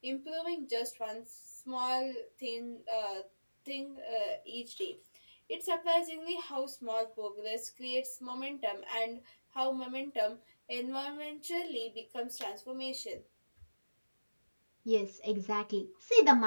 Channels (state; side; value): inverted; both; correlation -1.00